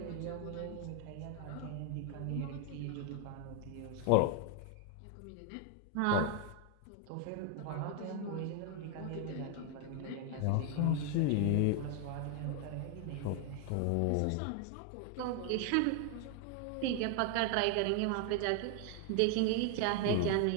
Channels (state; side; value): different; both; correlation 0.00